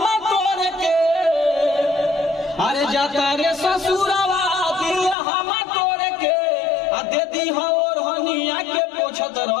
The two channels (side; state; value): right; drops out; at 5.2 s